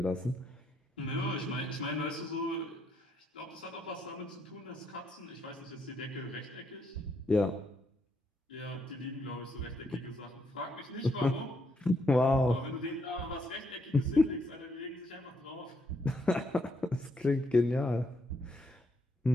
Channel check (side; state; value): both; normal; correlation 0.75